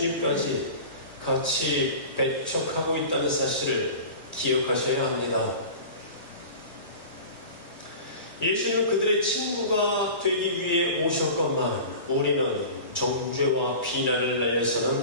같이 배척하고 있다는 사실을 기억하셔야 합니다. 예수님은 그들의 친구가 되기 위해 오셨건만 우리는 정죄와 비난을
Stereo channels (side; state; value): both; inverted; correlation -0.36